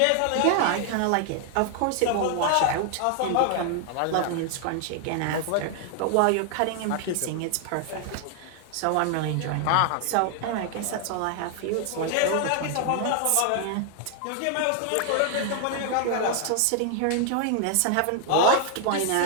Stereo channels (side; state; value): both; different; correlation 0.00